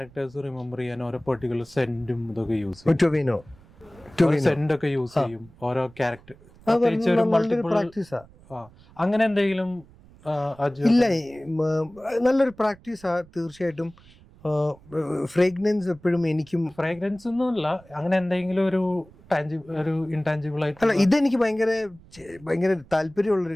റിമെമ്പർ ചെയ്യാൻ ഓരോ പെർട്ടിക്കുലർ സെന്റും ഇതൊക്കെ യൂസ് ചെയ്യും. സെന്റ് ഒക്കെ യൂസ് ചെയ്യും ഓരോ ക്യാരക്ടർ. അങ്ങനെ എന്തെങ്കിലും ഇല്ല, നല്ലൊരു പ്രാക്ടീസാ തീർച്ചയായിട്ടും. ഫ്രേഗ്രൻസ് എപ്പോഴും എനിക്കും ഫ്രേഗ്രൻസ് ഒന്നുമില്ല, അങ്ങനെ എന്തെങ്കിലും ഒരു ഇൻടാഞ്ചിബിൾ ആയിട്ട്. അല്ല, ഇതെനിക്ക് ഭയങ്കര താല്പര്യമുള്ളൊരു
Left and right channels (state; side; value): noise; right; rumble, 25 dB below the sound